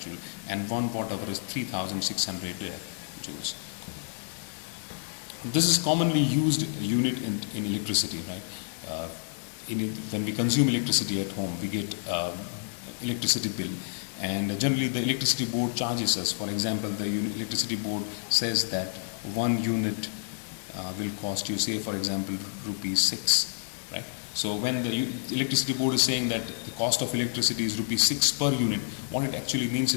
and 1 watt hour is 3600 joules. This is commonly used unit in electricity, right? When we consume electricity at home, we get electricity bill, and generally the electricity board charges us. For example, the electricity board says that 1 unit will cost you, say for example, rupees 6, right? So when the electricity board is saying that the cost of electricity is rupees 6 per unit, what it actually means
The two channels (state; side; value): silent; right; digital silence